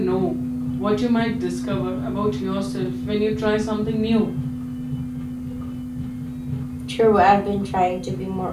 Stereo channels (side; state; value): both; identical; correlation 1.00